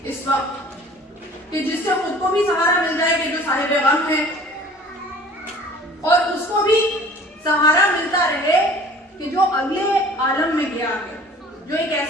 اس وقت کہ جس سے خود کو بھی سہارا مل جائے کہ جو صاحب غم ہے، اور اس کو بھی سہارا ملتا رہے کہ جو اگلے عالم میں گیا ہے، جو ایک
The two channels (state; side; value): normal; both; correlation 0.48